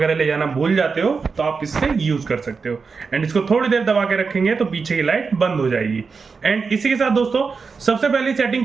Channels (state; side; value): quieter; left; 5.0 dB